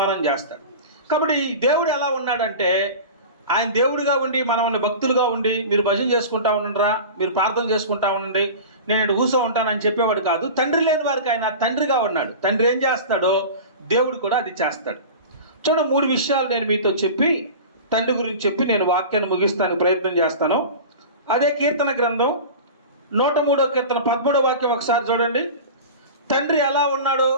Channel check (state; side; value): inverted; both; correlation -0.33